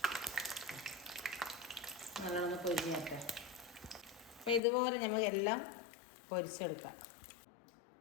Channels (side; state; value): right; drops out; at 4.6 s